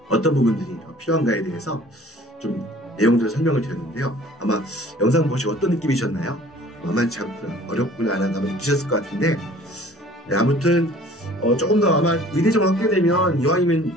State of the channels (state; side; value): normal; both; correlation 0.50